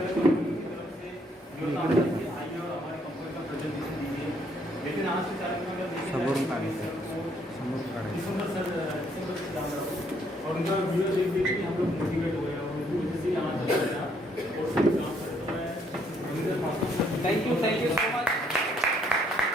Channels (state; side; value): normal; both; correlation 0.68